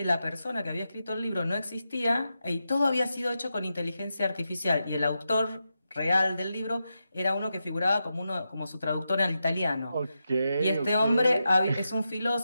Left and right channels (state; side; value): inverted; both; correlation -0.88